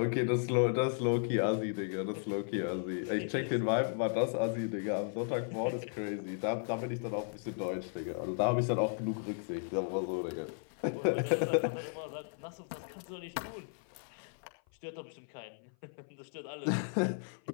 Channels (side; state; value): right; silent; 54 dB below the other